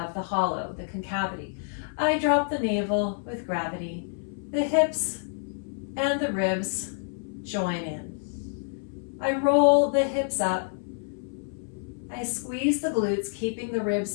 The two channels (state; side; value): silent; right; 59 dB below the other